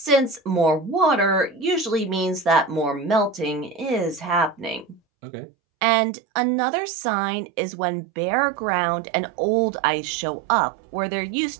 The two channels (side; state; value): left; drops out; at 5.0 s